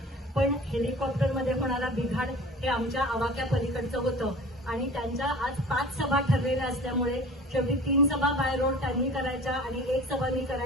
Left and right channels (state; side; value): normal; both; correlation 0.42